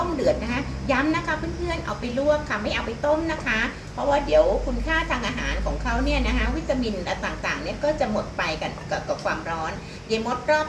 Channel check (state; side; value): identical; both; correlation 1.00